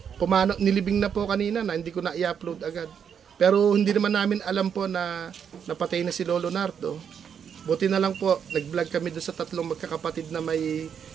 nilibing na po kanina na hindi ko na i-upload agad. Pero hindi naman namin alam po na napatay na si Lolo Nardo. Buti na lang po, nag-vlog kami doon sa tatlong magkakapatid na may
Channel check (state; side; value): quieter; left; 7.7 dB